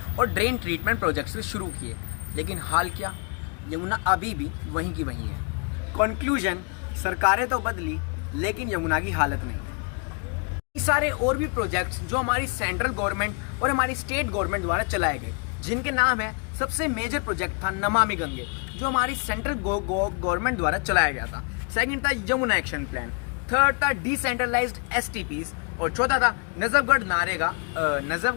और ड्रेन ट्रीटमेंट प्रोजेक्ट्स शुरू किए। लेकिन हाल क्या, यमुना अभी भी वहीं की वहीं है। कंक्लूजन, सरकारें तो बदली, लेकिन यमुना की हालत नहीं। सारे और भी प्रोजेक्ट्स जो हमारी सेंट्रल गवर्नमेंट और हमारी स्टेट गवर्नमेंट द्वारा चलाए गए, जिनके नाम है, सबसे मेजर प्रोजेक्ट था नमामि गंगे, जो हमारी सेंट्रल गवर्नमेंट द्वारा चलाया गया था। सेकंड था यमुना एक्शन प्लान, थर्ड था डिसेंट्रलाइज्ड STPs, और चौथा था नजफगढ़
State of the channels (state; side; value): quieter; right; 36.8 dB